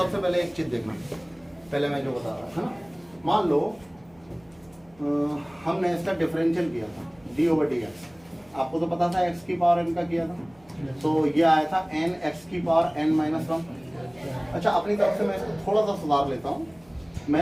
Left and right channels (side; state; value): right; noise; hum, 29 dB below the sound